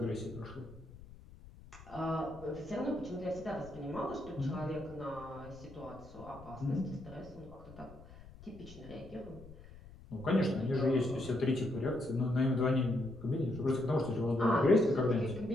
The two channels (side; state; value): left; noise; rumble, 18 dB below the sound